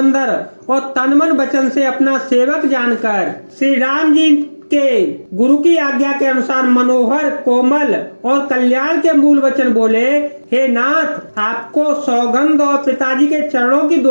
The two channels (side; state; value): both; inverted; correlation -1.00